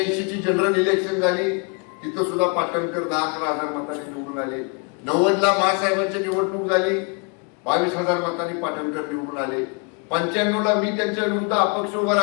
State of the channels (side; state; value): right; quieter; 35.2 dB